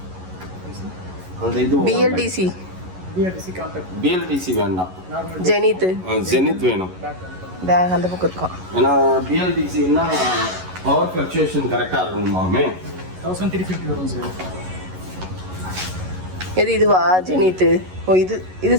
அந்த இது பிஎல்டிசி வேண்டாம், ஜெனித் வேணும். பேக் அந்த பக்கம் இருக்கும். ஏன்னா பிஎல்டிசின்னா பவர் ஃப்ளக்சுவேஷன் கரெக்டா இருக்கணுமாமே. 1350 வரும் சார். எது இதுவா ஜெனித்? ஓ இது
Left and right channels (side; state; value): left; late; 11 ms